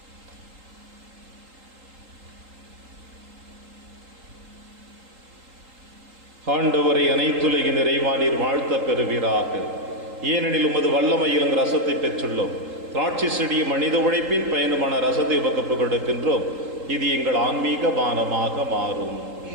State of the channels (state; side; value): late; left; 3.8 ms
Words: ஆண்டவரை அனைத்துலகின் நிறைவா நீர் வாழ்த்த பெறுவீராக. ஏனெனில் உமது வல்லமையில் ரசத்தை பெற்றுள்ளோம். திராட்சை செடியும் மனித உழைப்பின் பயணமான ரசத்தை உமக்கு கொடுக்கின்றோம். இது எங்கள் ஆன்மீக பானமாக மாறும்.